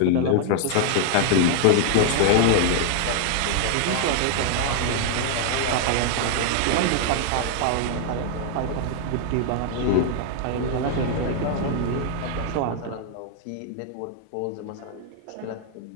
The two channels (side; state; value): both; different; correlation 0.00